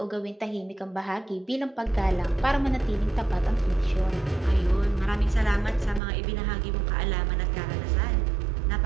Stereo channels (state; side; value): drops out; left; at 6.0 s